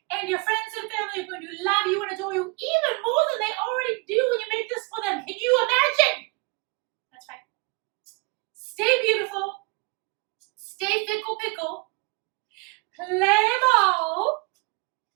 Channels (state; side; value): quieter; left; 29.1 dB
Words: and your friends and family are going to love you and adore you even more than they already do when you make this for them. Can you imagine? That's right. Stay beautiful. Stay pickle, play ball,